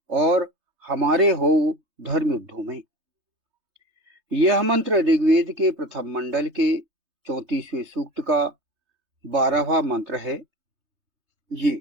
और हमारे हो धर्म युद्धों में। यह मंत्र ऋग्वेद के प्रथम मंडल के 34वें सूक्त का 12वां मंत्र है।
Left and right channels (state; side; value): late; left; 3.3 ms